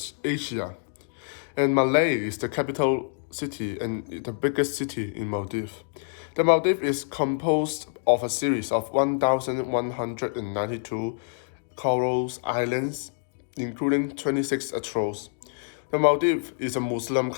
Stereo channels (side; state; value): right; silent; digital silence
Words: Asia. And Malé is the capital city and the biggest city in Maldives. The Maldives is composed of a series of 1,192 coral islands, including 26 atolls. The Maldives is a Muslim